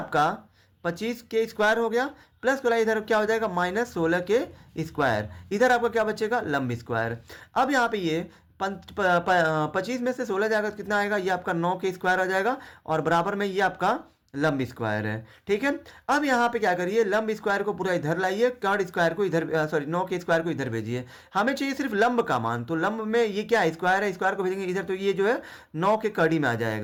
25k स्क्वायर हो गया, प्लस वाला इधर क्या हो जाएगा, -16k स्क्वायर। इधर आपका क्या बचेगा, लंब स्क्वायर। अब यहाँ पे ये 25 में से 16 जाएगा तो कितना आएगा, ये आपका 9k स्क्वायर आ जाएगा, और बराबर में ये आपका लंब स्क्वायर है। ठीक है, अब यहाँ पे क्या करिए, लंब स्क्वायर को पूरा इधर लाइए, कर्ण स्क्वायर को इधर, सॉरी 9 के स्क्वायर को इधर भेजिए। हमें चाहिए सिर्फ लंब का मान, तो लंब में ये क्या स्क्वायर है, स्क्वायर को भेजेंगे इधर, तो ये जो है 9 के कड़ी में आ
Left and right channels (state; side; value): identical; both; correlation 1.00